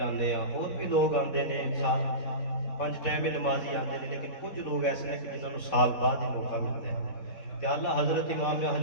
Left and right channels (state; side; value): late; right; 4.0 ms